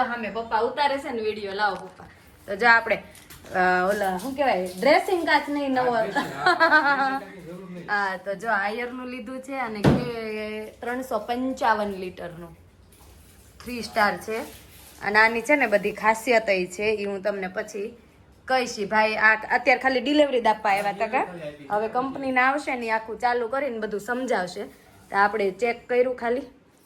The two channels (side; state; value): both; identical; correlation 1.00